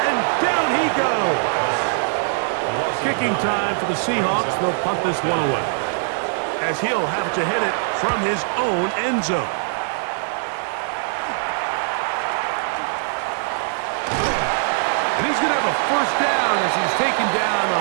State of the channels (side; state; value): left; silent; 64 dB below the other